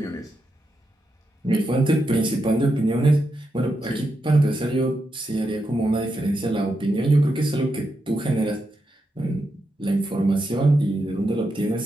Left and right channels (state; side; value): normal; both; correlation 0.85